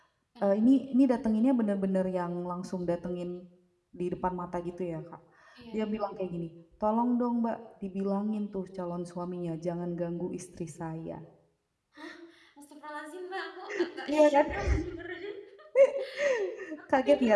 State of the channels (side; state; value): both; identical; correlation 1.00